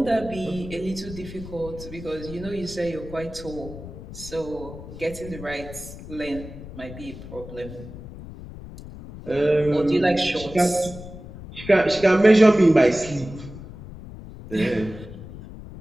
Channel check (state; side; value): noise; left; rumble, 13 dB below the sound